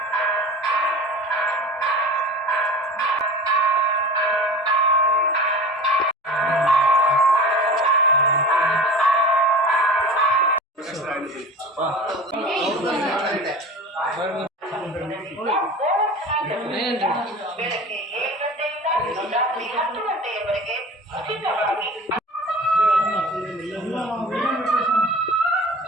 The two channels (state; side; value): normal; both; correlation 0.36